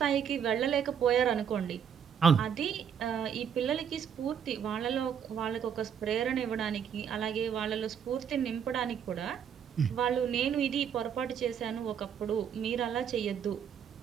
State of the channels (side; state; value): left; quieter; 8.0 dB